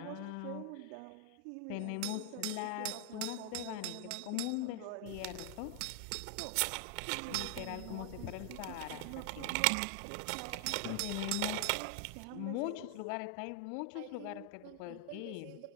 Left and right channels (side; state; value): both; different; correlation 0.00